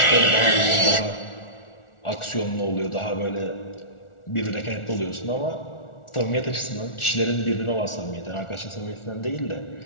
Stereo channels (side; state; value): right; late; 1.4 ms